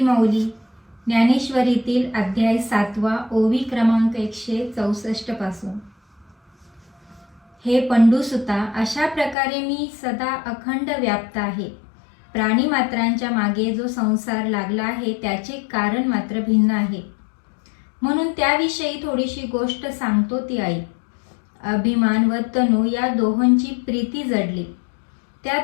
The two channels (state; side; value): drops out; right; at 9.3 s